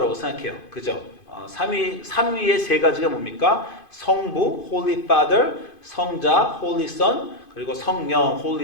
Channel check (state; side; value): late; right; 2.5 ms